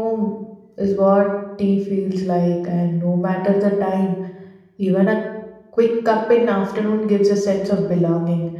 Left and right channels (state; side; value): identical; both; correlation 1.00